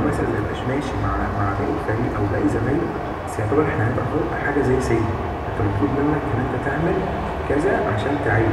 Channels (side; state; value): both; identical; correlation 1.00